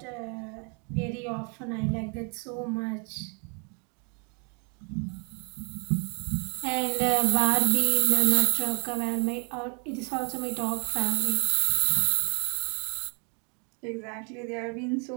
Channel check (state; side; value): quieter; left; 35.7 dB